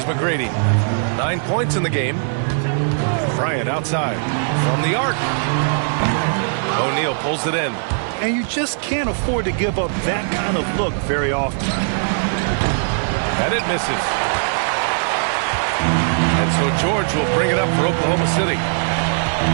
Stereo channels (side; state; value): left; silent; digital silence